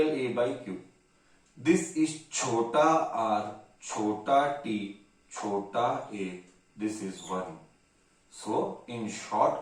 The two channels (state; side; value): identical; both; correlation 1.00